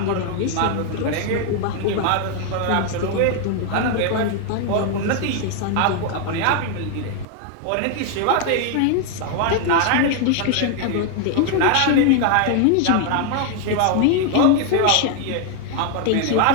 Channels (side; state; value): both; different; correlation 0.00